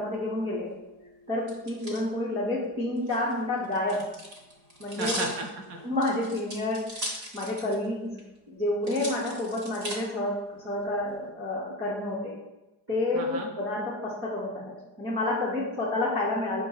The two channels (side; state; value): left; late; 4.8 ms